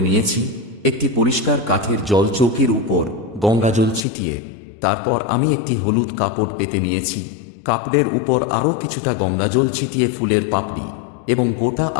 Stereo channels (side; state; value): right; drops out; at 4.0 s